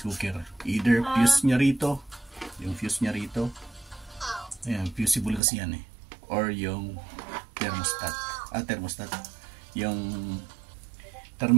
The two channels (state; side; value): drops out; left; at 5.4 s